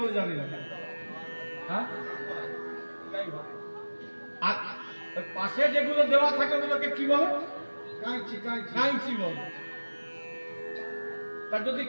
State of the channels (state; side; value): inverted; both; correlation -1.00